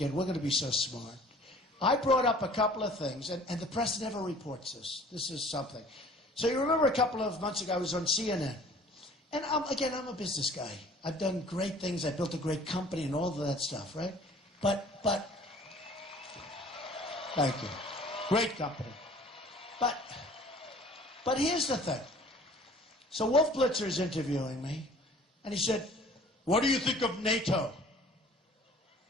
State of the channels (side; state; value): both; normal; correlation 0.50